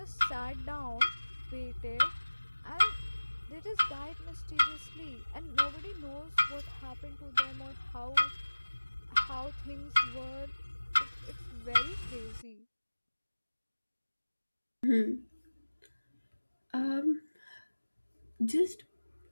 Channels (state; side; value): inverted; both; correlation -1.00